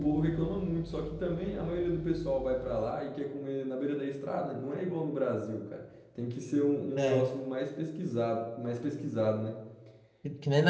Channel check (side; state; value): both; identical; correlation 1.00